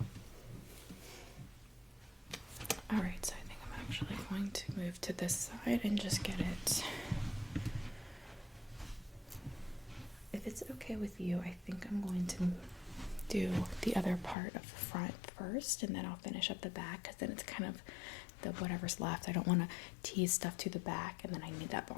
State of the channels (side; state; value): right; drops out; at 14.4 s